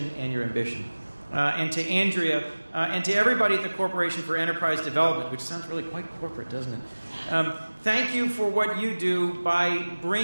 and your ambition. And to Andrea, and to everybody at the Corporation for Enterprise Development, which sounds really quite corporate, doesn't it? Thank you for what you do by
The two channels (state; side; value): inverted; both; correlation -1.00